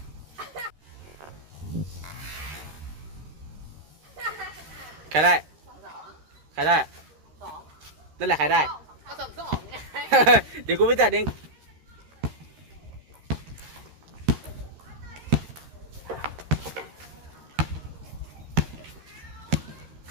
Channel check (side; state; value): left; late; 13 ms